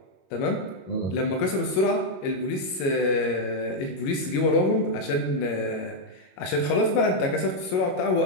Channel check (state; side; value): late; right; 22 ms